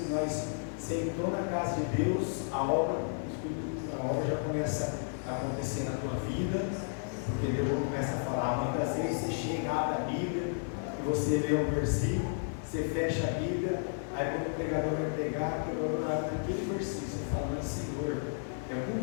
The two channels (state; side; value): silent; right; digital silence